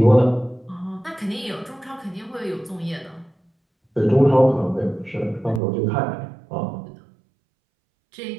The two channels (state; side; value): drops out; left; at 5.6 s